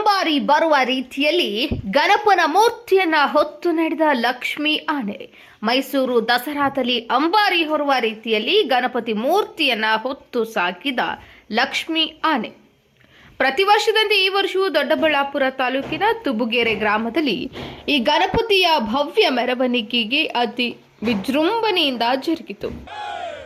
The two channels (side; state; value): both; identical; correlation 1.00